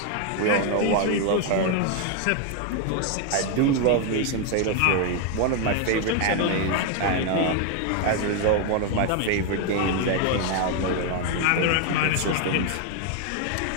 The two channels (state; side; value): different; both; correlation 0.01